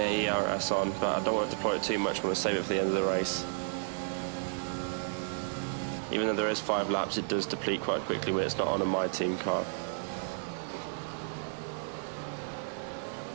ERS on, but I don't want to deploy it too much, I want to save it for the end of the race. Even though there is 5 laps, it does deplete quite quickly when it's not on a My Team car.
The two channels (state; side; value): silent; left; 56 dB below the other